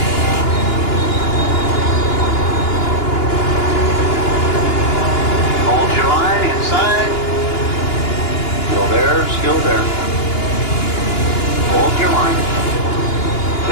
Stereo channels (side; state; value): right; late; 2.9 ms